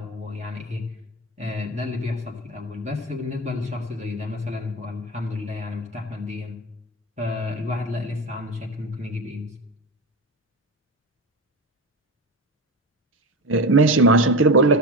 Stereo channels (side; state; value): both; normal; correlation 0.24